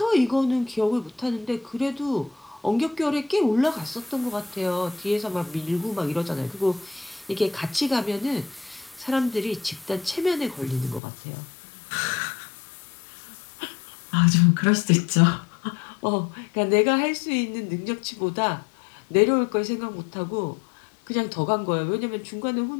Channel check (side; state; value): right; drops out; at 11.0 s